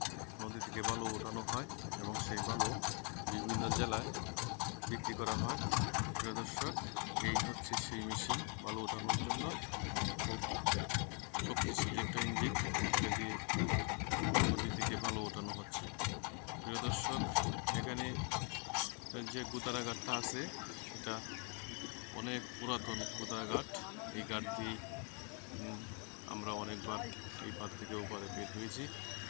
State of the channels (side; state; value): right; quieter; 37.5 dB